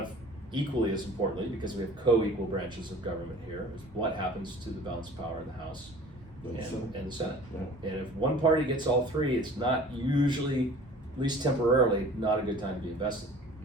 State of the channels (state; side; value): normal; both; correlation 0.46